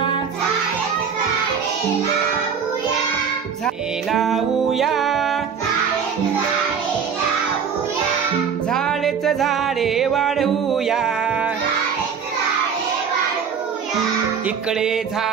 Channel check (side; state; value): left; quieter; 6.7 dB